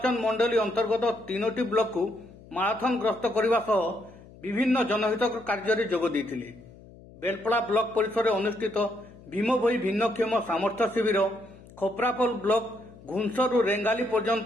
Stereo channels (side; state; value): left; noise; hum, 21 dB below the sound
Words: मंडली अंतर्गत 3टी ब्लॉक को माराथन ग्रस्त करने सह विभिन्न जनहित कार्य जोग देथिले। बेलपड़ा ब्लॉक परिसर में अनुष्ठित भीमभोई भिन्नक्षम सामर्थ्य शिविर, खोपरापोल ब्लॉक घुंसरू रेंगाली